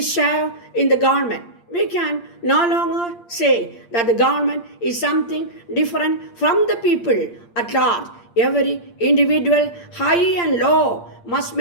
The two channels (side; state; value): right; late; 8.6 ms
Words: share in the government. We can no longer say that the government is something different from the people at large. Every individual, high and low, must